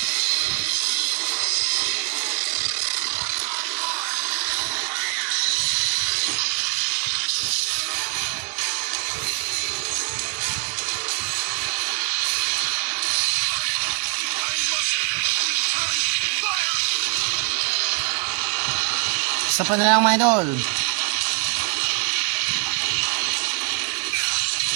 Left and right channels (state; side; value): quieter; left; 33.6 dB